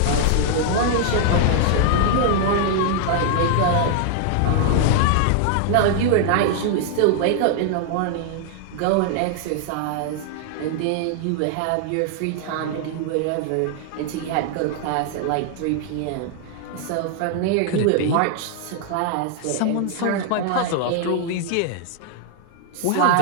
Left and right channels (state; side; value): different; both; correlation 0.00